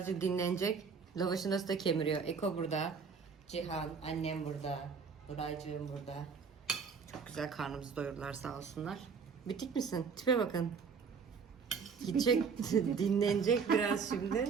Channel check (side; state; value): left; quieter; 5.7 dB